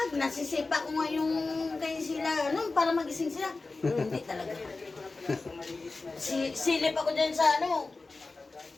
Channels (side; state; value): right; quieter; 3.6 dB